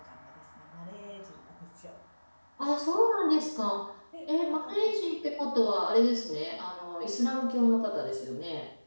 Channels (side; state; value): both; inverted; correlation -1.00